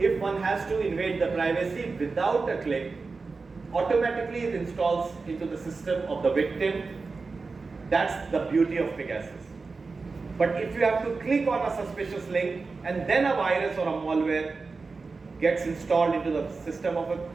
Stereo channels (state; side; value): quieter; left; 4.2 dB